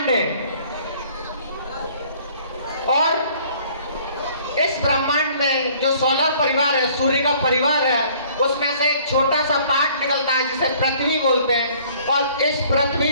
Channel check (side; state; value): both; inverted; correlation -0.56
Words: हैं, और इस ब्रह्मांड में जो सोलर परिवार है, सूर्य का परिवार है, उसमें से एक छोटा सा पार्ट निकलता है जिसे पृथ्वी बोलते हैं। और इस